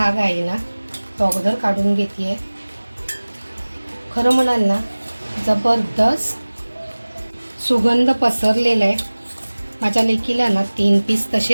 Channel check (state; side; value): inverted; both; correlation -1.00